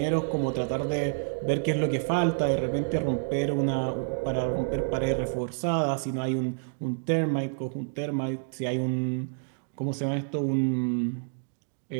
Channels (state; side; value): silent; left; digital silence